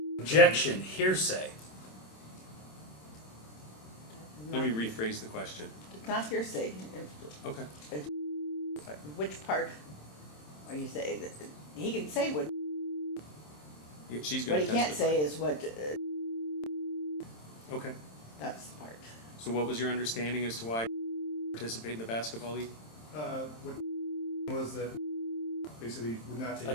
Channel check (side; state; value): right; late; 27 ms